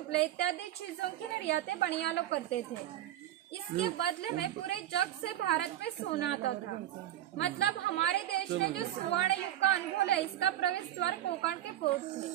इत्यादि चीजों की निर्यातें बनिया लोग करते थे। इसके बदले में पूरे जग से भारत में सोना आता था। मतलब हमारे देश ने जो स्वर्ण युग का अनुभव है, इसका प्रवेश द्वार कोंकण के पोर्ट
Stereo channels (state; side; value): quieter; left; 12.6 dB